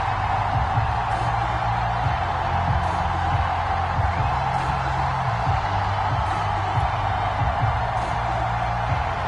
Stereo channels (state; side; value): identical; both; correlation 1.00